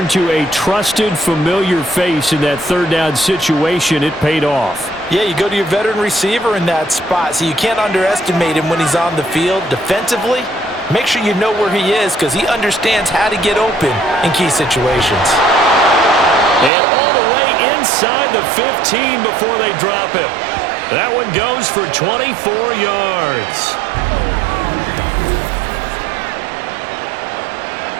to a trusted, familiar face in that 3rd down situation. It paid off. Yeah, you go to your veteran receiver in that spot, so you can't underestimate him when he's on the field. Defensively, make sure you know where he is because he understands how to get open in key situations. And all the way inside the 15 before they drop him. That one goes for 24 yards.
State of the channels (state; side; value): drops out; left; at 16.7 s